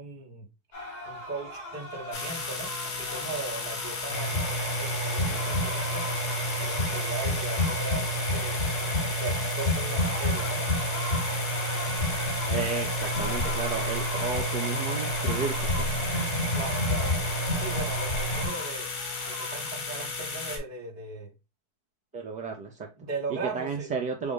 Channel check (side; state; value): right; late; 4.6 ms